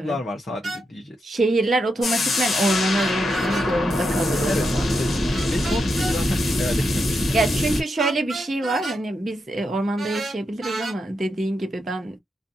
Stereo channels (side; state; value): both; normal; correlation 0.84